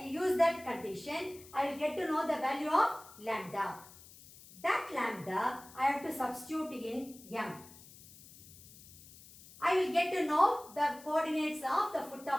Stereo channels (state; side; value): noise; left; hiss, 20 dB below the sound